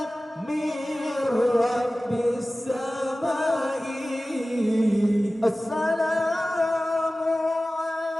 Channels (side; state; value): both; normal; correlation 0.97